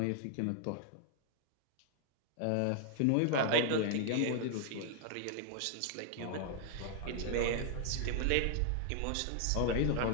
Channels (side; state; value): both; different; correlation 0.00